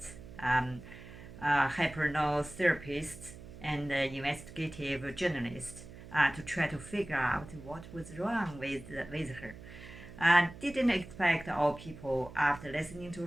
hypnotherapists, and investigative journalists to try to figure out what was wrong with her. Didn't expect all people, after listening to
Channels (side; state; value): right; noise; hum, 16 dB below the sound